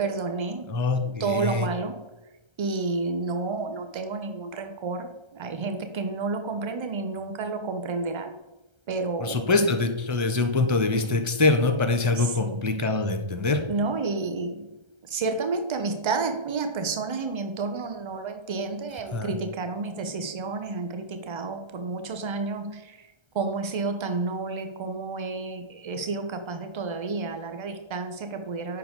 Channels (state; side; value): late; left; 1.3 ms